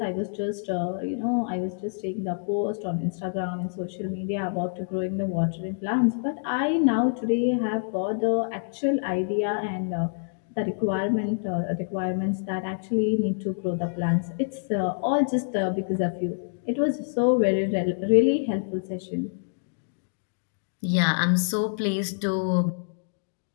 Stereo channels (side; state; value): right; silent; digital silence